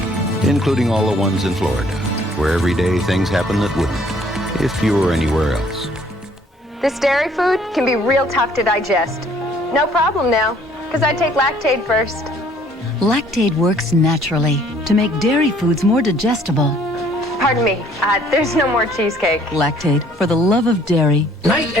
including all the ones in Florida, where every day things happen that wouldn't if you were anywhere else. This dairy food can be real tough to digest. No problem now, because I take Lactaid first. Lactaid works naturally to make dairy foods more digestible. Pardon me, there's no more cheesecake. Lactaid, for the love of dairy. Night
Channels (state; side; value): normal; both; correlation 0.60